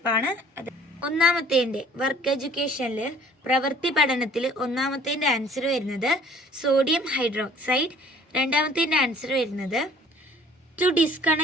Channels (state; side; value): normal; both; correlation 0.53